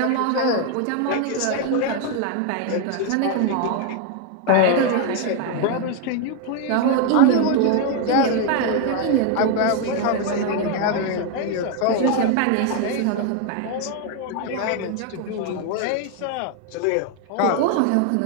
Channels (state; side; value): different; both; correlation 0.01